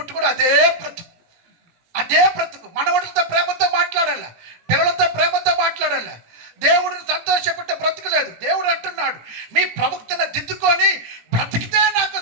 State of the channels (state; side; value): late; left; 17 ms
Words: కూడా అదే బ్రతుకు. మనవడితో ప్రేమతో మాట్లాడాల, పిల్లలతో ప్రేమతో మాట్లాడాల. దేవుడిని సంతోషపెట్టే బ్రతుకు లేదు. దేవుడు అంటున్నాడు, మీ ప్రవక్తను దిద్దుకొని బ్రతికితే నాకు